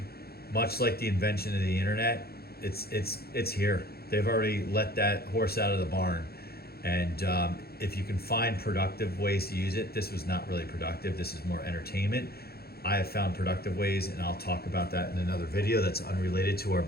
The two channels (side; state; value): right; late; 0.45 ms